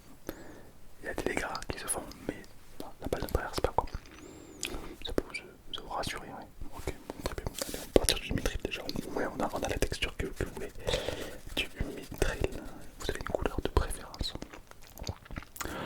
il y a des dégâts qui se font, mais bon, la balle ne traverse pas quoi. Ça peut vous rassurer, ouais. Ok, bon, très bien. Allez, on va partir du mithril déjà. Ouais, on a la texture que vous voulez. Du mithril, vous avez une couleur de préférence.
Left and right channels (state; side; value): identical; both; correlation 1.00